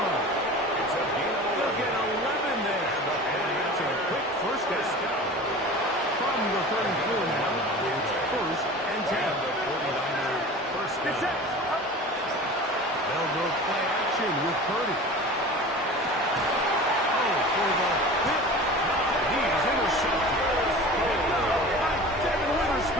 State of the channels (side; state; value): both; normal; correlation 0.37